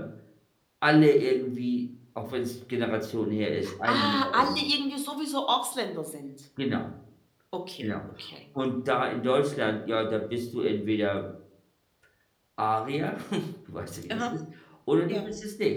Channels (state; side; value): identical; both; correlation 1.00